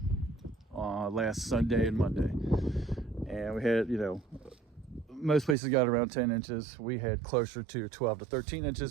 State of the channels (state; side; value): drops out; left; at 5.6 s